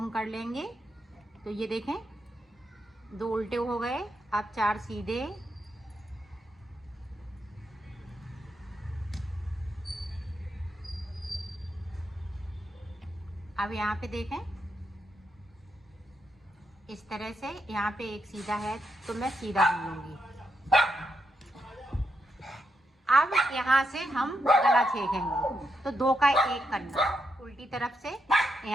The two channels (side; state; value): both; normal; correlation 0.82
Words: कर लेंगे। तो ये देखें 2 उल्टे हो गए, अब 4 सीधे, अब यहाँ पे देखें इस तरह से, यहाँ पे एक सीधा है तो मैं सीधा बुन लूंगी। अब यहाँ से हम गला छेकेंगे तो 2 का 1 करना, उल्टी तरफ से